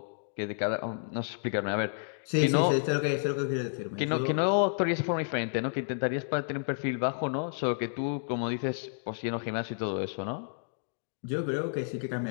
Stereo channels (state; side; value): silent; right; digital silence